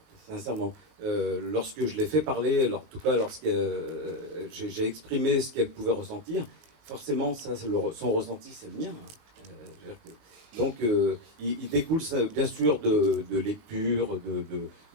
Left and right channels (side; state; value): left; late; 19 ms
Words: sincèrement. Lorsque je l'ai fait parler, en tout cas lorsque j'ai exprimé ce qu'elle pouvait ressentir, forcément, ça, son ressenti, c'est le mien. Hein. Donc, il découle ça, bien sûr de lectures,